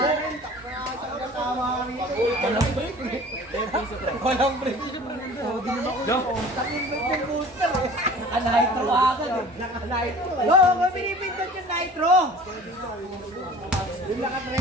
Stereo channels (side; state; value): both; normal; correlation 0.44